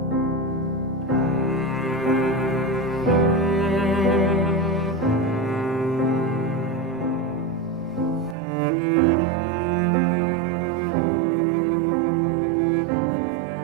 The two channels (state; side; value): drops out; left; at 8.3 s